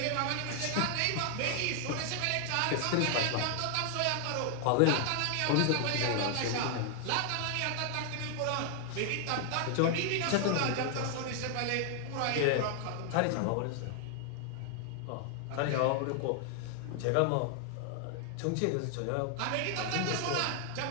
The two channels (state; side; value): different; both; correlation 0.00